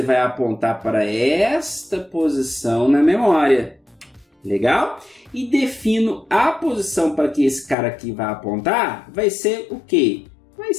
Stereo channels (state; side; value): drops out; right; at 7.8 s